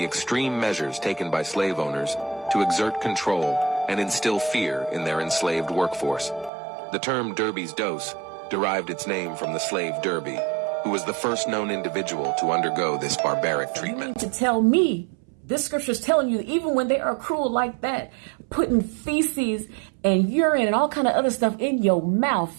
extreme measures taken by slave owners to exert control and instill fear in their enslaved workforce. The term Derby's dose derived its name from the slave Derby, who was the first known individual to undergo this barbaric treatment. You mean to tell me this scripture is telling you even when they are cruel like that, putting feces and urine and all kind of other stuff in your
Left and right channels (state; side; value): drops out; left; at 6.5 s